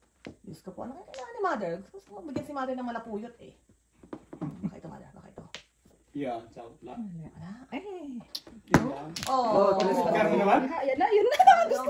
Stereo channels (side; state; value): both; identical; correlation 1.00